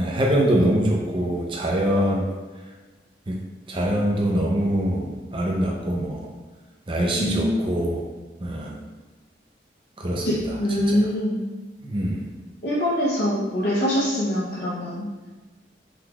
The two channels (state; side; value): normal; both; correlation 0.70